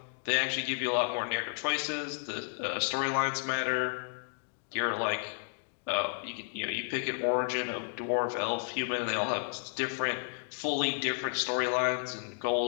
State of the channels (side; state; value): right; silent; digital silence